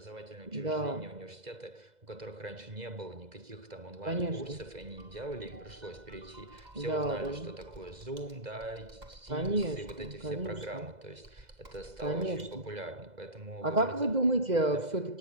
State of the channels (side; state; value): left; late; 2.0 ms